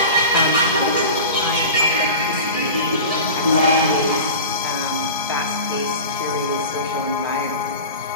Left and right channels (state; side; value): inverted; both; correlation -0.32